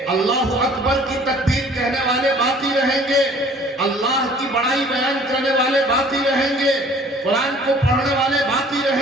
اللہ اکبر کی تکبیر کہنے والے باقی رہیں گے، اللہ کی بڑائی بیان کرنے والے باقی رہیں گے، قرآن کو پڑھنے والے باقی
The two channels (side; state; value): both; normal; correlation 0.52